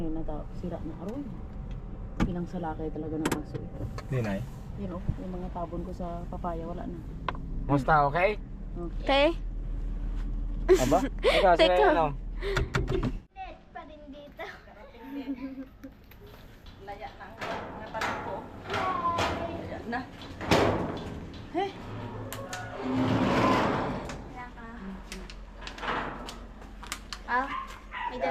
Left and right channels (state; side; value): identical; both; correlation 1.00